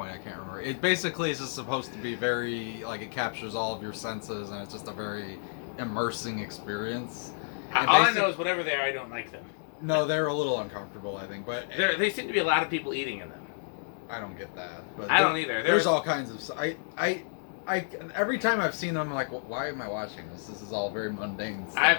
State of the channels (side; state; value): right; silent; digital silence